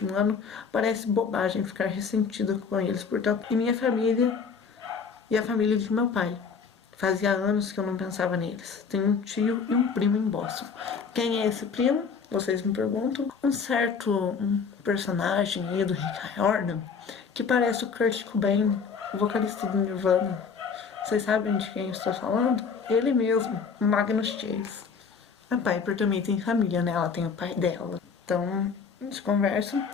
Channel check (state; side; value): quieter; right; 5.7 dB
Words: ano, parece bobagem ficar ressentida com eles, portanto, e minha família e a família de meu pai. Fazia anos que eu não pensava neles. Tenho um tio e um primo em Boston. Quem é esse primo? Vocês me perguntam. Um certo personagem aí do Rick Riordan, que parece o Kurt Cobain, o vocalista do Nirvana. Vocês sabem de quem eu estou falando? Ele mesmo, Magnus Chase. A Piper também tem família, né? Ela tem o pai dela. Então, eles conversam.